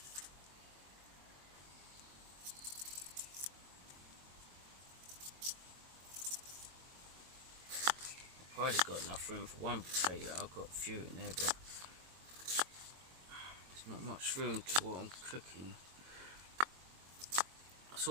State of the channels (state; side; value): late; left; 22 ms